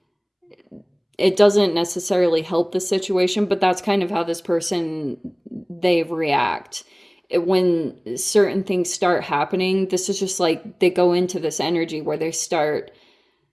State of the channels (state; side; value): identical; both; correlation 1.00